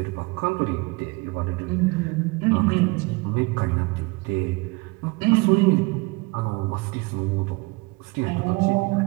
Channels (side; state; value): left; quieter; 25.9 dB